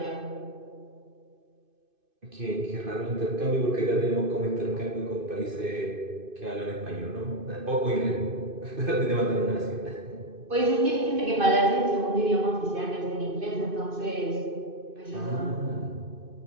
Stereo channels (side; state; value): left; late; 2.5 ms